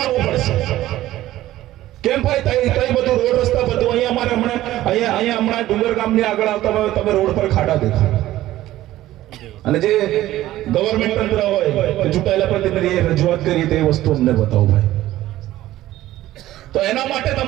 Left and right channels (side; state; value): left; quieter; 14.9 dB